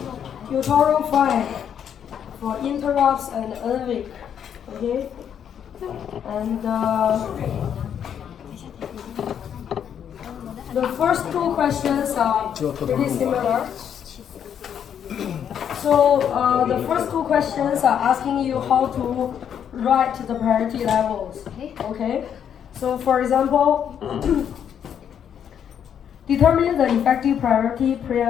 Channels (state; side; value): quieter; right; 8.7 dB